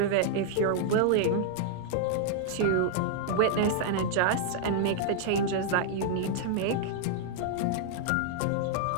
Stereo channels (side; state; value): both; different; correlation -0.01